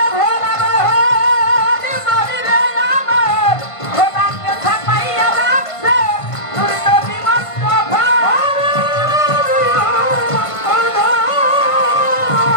ভোলা মোহন মরিরে আমার, খোদাকে ছাপাইয়া রাখছে তোর নবী মুস্তাফা।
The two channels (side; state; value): right; late; 1.5 ms